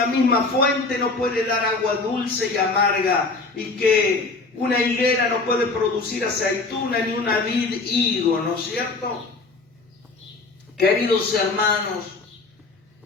misma fuente no puede dar agua dulce y amarga, y que una higuera no puede producir aceituna ni una vid higo, ¿no es cierto? Queridos hermanos,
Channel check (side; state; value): right; quieter; 3.7 dB